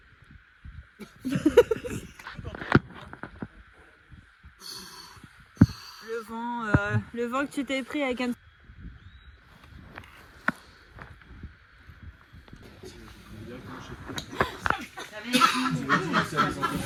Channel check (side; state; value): both; identical; correlation 1.00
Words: Le vent que tu t'es pris avec un...